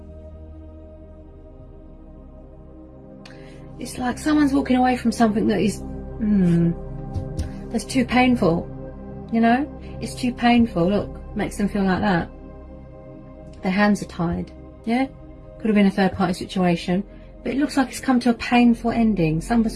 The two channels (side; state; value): both; identical; correlation 1.00